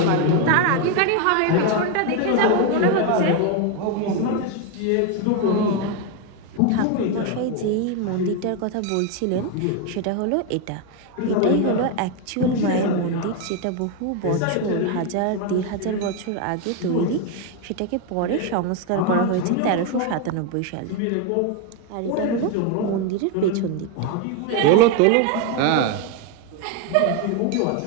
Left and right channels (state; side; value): different; both; correlation 0.01